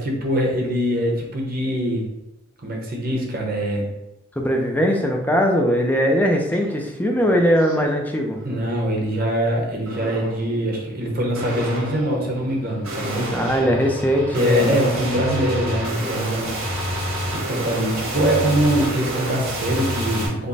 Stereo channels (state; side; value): normal; both; correlation 0.57